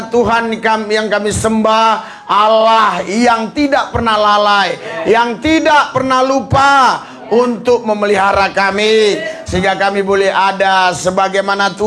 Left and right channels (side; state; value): both; identical; correlation 1.00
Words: Tuhan yang kami sembah Allah yang tidak pernah lalai, yang tidak pernah lupa untuk memelihara kami, sehingga kami boleh ada sebagaimana